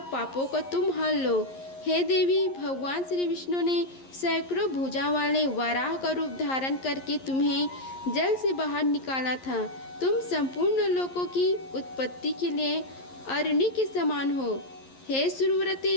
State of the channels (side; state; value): right; late; 11 ms